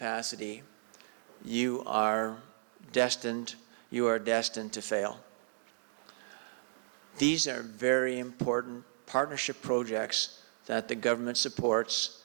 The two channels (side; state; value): left; silent; digital silence